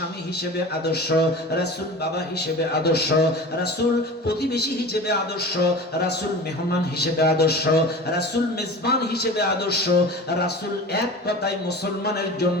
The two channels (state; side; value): normal; both; correlation 0.35